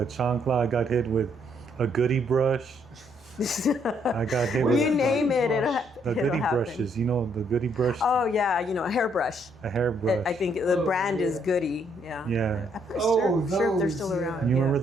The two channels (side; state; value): both; normal; correlation 0.71